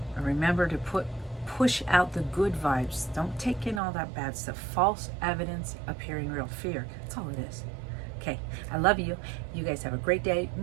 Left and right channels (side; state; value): left; drops out; at 3.8 s